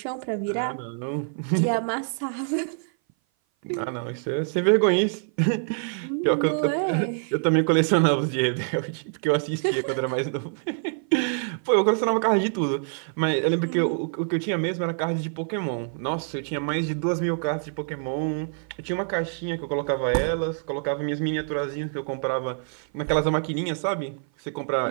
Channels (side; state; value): left; silent; 57 dB below the other